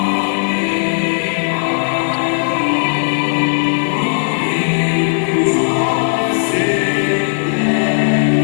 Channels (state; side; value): silent; right; 69 dB below the other